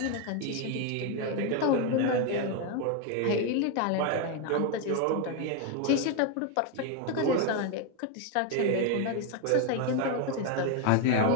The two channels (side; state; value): both; different; correlation 0.01